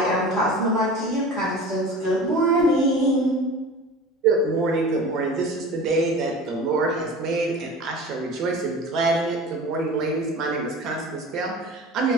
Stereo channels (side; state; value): both; normal; correlation 0.37